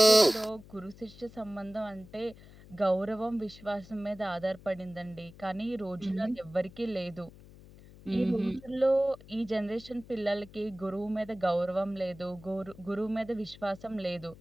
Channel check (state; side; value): noise; left; hum, 20 dB below the sound